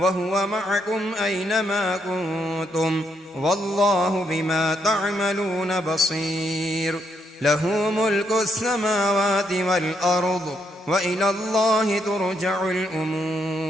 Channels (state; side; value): normal; both; correlation 0.76